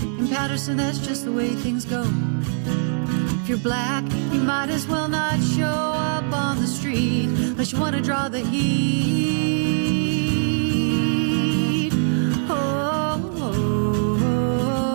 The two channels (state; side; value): silent; left; 61 dB below the other